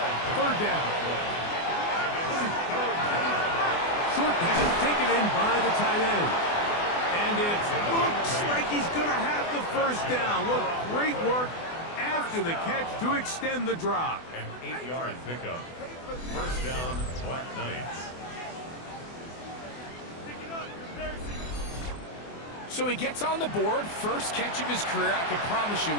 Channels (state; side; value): late; right; 24 ms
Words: 3rd down. Short pass taken in by the tight end. And it looks like he's going to have the 1st down. What great work after the catch to extend the drive. An 8-yard pickup. 1st down, Black Knights. So he gets on the board, first catch of his career. I can promise you